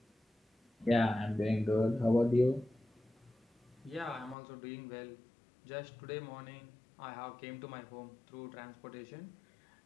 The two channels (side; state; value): right; drops out; at 4.4 s